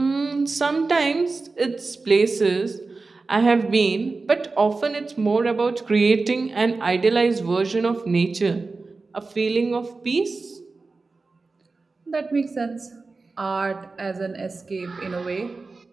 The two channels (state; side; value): quieter; left; 3.9 dB